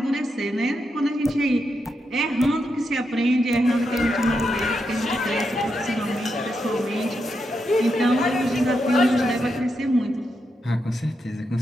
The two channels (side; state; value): both; normal; correlation 0.84